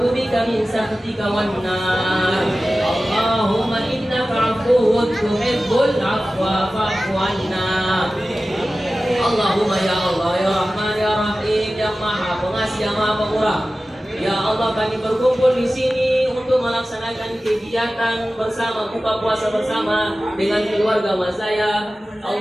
bika min sakhatika wan nar. Allahumma innaka 'afuwwun tuhibbul 'afwa fa'fu 'anna. Allahumma ya Allah ya Rahman ya Rahim ya Maha Pengasih yang Maha Pemurah. Ya Allah, kami berkumpul di sini untuk melaksanakan kegiatan bersama buka puasa bersama dengan keluarga Mazaya.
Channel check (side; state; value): both; normal; correlation 0.96